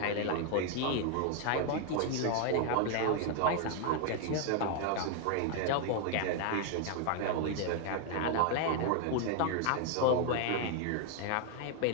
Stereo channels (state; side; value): different; both; correlation 0.00